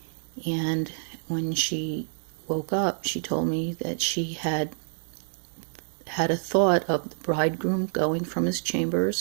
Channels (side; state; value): left; silent; 59 dB below the other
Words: And when she woke up, she told me that she had a thought of the bridegroom going from his